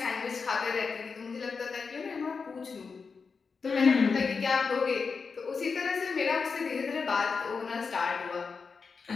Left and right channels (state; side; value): quieter; right; 5.1 dB